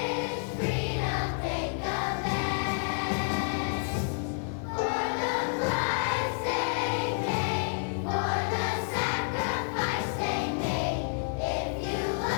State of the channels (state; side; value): silent; right; digital silence